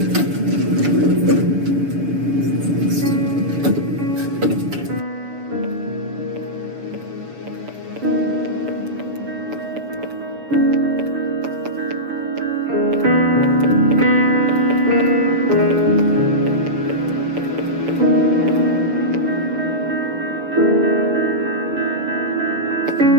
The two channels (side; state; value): left; late; 6.9 ms